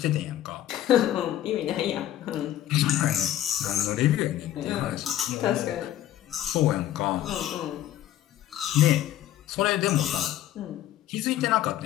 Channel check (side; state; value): right; quieter; 12.6 dB